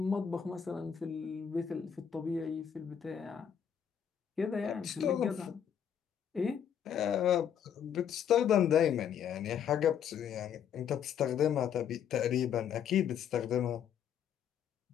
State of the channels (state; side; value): quieter; right; 8.5 dB